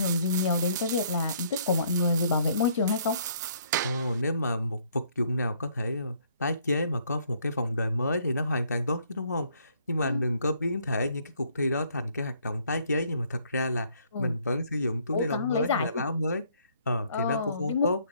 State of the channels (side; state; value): both; inverted; correlation -0.65